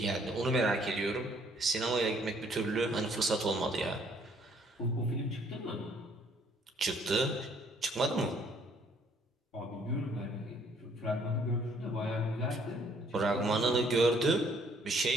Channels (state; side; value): normal; both; correlation 0.63